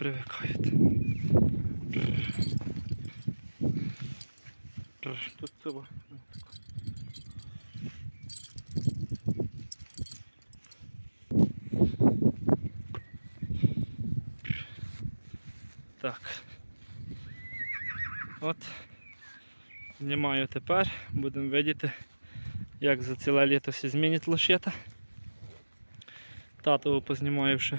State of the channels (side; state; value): both; inverted; correlation -1.00